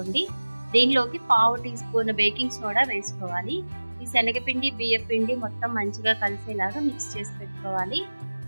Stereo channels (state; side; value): inverted; both; correlation -1.00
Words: దీనిలోకి పావు టీ స్పూన్ బేకింగ్ సోడా వేసుకోవాలి. ఈ శనగపిండి బియ్యపిండి మొత్తం మంచిగా కలిసేలాగా మిక్స్ చేసి పెట్టుకోవాలి.